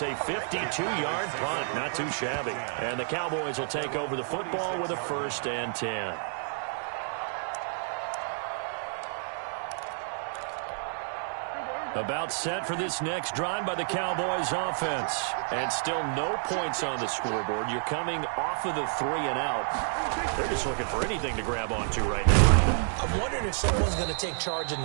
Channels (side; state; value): left; silent; digital silence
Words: a 52-yard punt. Not too shabby. And the Cowboys will take over the football with a 1st and 10. About set for this next drive by the Cowboys offense. And still no points on the scoreboard. You're coming off of the 3 and out. They're just looking for anything to grab onto right now. I'm wondering if someone's going to take charge in